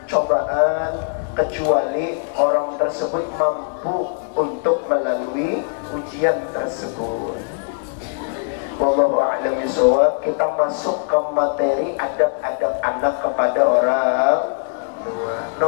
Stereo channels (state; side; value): silent; right; digital silence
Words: cobaan, kecuali orang tersebut mampu untuk melalui ujian tersebut. Wallahu a'lam bishawab. Kita masuk ke materi adab-adab anak kepada orang tua.